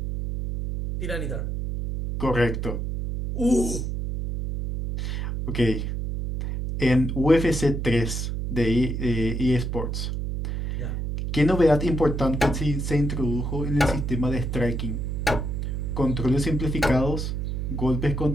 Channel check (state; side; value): noise; right; hum, 3 dB below the sound